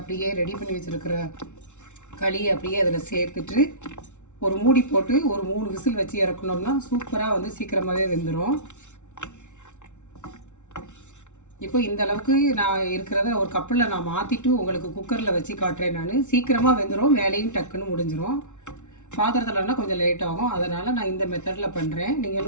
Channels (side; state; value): right; late; 0.84 ms